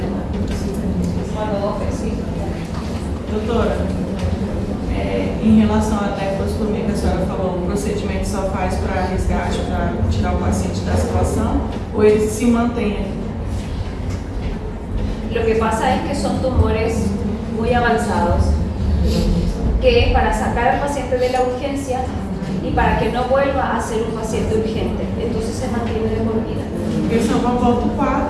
Cuando vos ves, sí. Doutora, em relação à tecostomia que a senhora falou, o procedimento só faz para resgate, para tirar o paciente da situação, ou ele se mantém aqui? Lo que pasa es que son tumores muy avanzados, que es para sacar al paciente de la urgencia y para que no vuelva a ser un paciente urgente. Entonces se mantiene de por vida. Porque senão volta o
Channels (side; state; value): both; identical; correlation 1.00